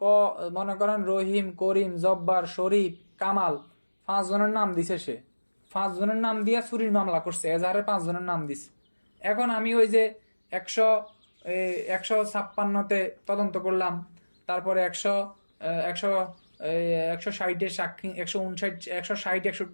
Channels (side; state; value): both; inverted; correlation -1.00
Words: মনে করেন রহিম, করিম, জব্বার, শরীফ, কামাল 5 জনের নাম দিছে, সে 5 জনের নাম দিয়ে চুরির মামলা করছে, এজাহারে 5 জনের নাম দিছে। এখন আমি ওই যে 156-তে তদন্ত করলাম, তারপরে 160-এর সাক্ষী,